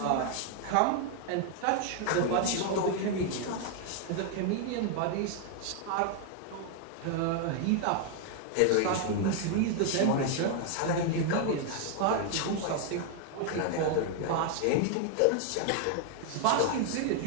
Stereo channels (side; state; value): both; different; correlation 0.00